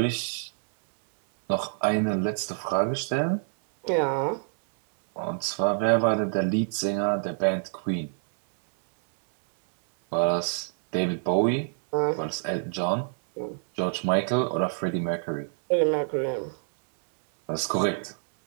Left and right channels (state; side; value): silent; left; 61 dB below the other